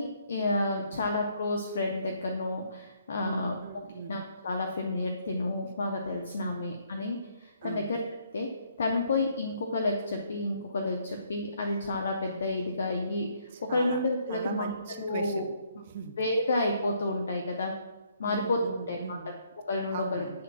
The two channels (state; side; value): inverted; both; correlation -0.68